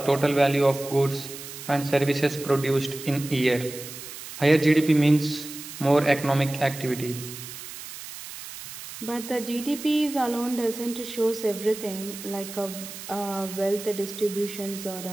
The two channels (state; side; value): noise; right; hiss, 12 dB below the sound